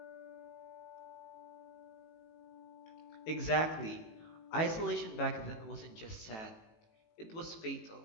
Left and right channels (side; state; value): right; late; 18 ms